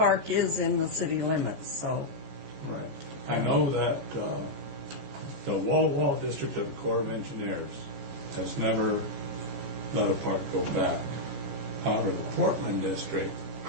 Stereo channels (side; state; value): left; late; 14 ms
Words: is in the city limits, so. Right. I know that the Wall district of the Corps of Engineers has never let a park go back. However, the Portland district,